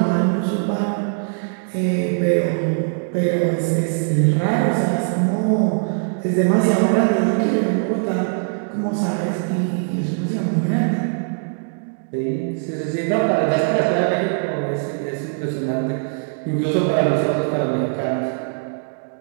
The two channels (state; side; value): silent; left; 64 dB below the other